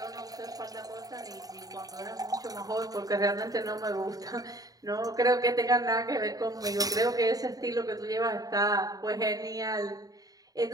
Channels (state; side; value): late; left; 0.18 ms